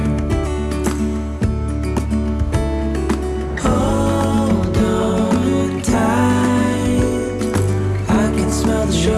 Hold on tight, I can smell the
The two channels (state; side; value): identical; both; correlation 1.00